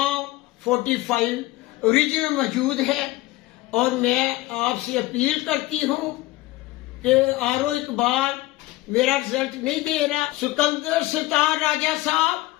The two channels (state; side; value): quieter; right; 18.3 dB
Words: 45 اوریجنل موجود ہے اور میں آپ سے اپیل کرتی ہوں کہ آر او اقبال میرا رزلٹ نہیں دے رہا۔ سکندر سلطان راجہ صاحب،